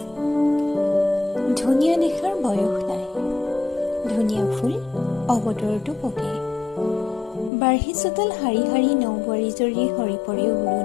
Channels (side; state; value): right; drops out; at 7.5 s